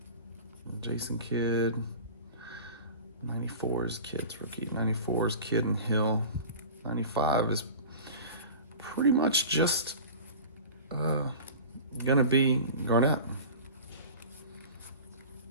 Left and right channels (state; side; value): inverted; both; correlation -0.36